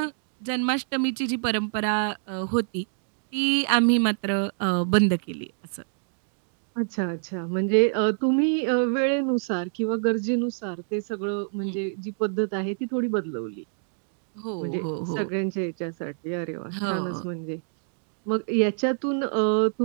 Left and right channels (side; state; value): left; silent; digital silence